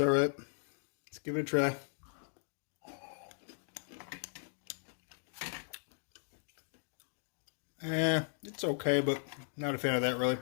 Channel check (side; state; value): right; silent; digital silence